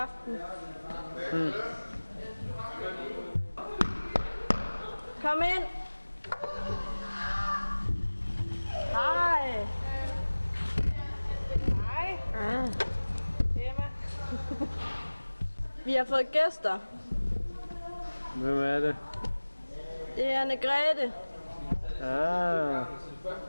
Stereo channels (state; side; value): inverted; both; correlation -1.00